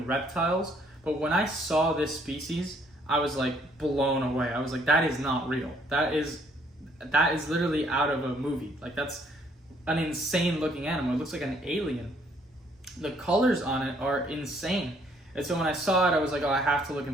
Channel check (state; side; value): normal; both; correlation 0.65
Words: reptiles. But when I saw this species, I was like blown away. I was like, that is not real. That is literally out of a movie. Like an insane looking animal. It looks like an alien. The colors on it are insane. And so when I saw it, I was like, oh, I have to look